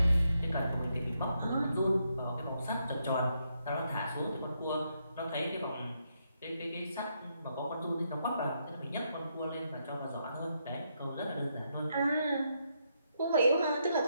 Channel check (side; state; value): both; inverted; correlation -0.79